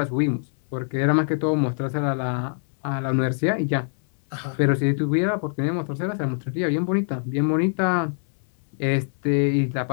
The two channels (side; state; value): right; silent; 63 dB below the other